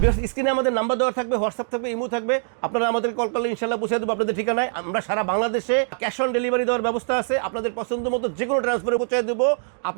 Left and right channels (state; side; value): silent; left; digital silence